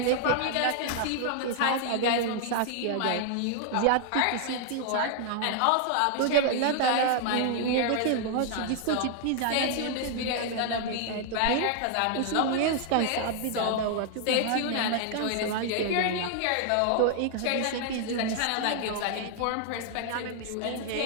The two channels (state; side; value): different; both; correlation 0.00